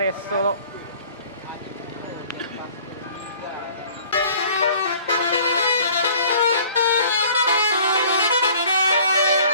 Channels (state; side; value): inverted; both; correlation -0.51